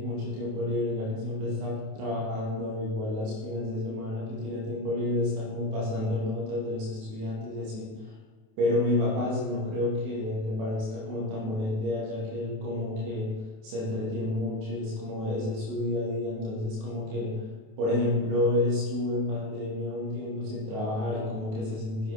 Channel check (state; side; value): late; left; 28 ms